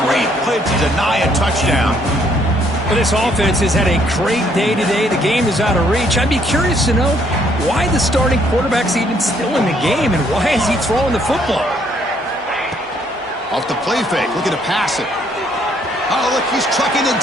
Great play to deny a touchdown. Well, this offense has had a great day today. The game is out of reach. I'd be curious to know why the starting quarterback's even still in the game and why is he throwing the football? Off the play fake, looking to pass it. Oh, look, he's trucking it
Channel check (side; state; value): both; normal; correlation 0.67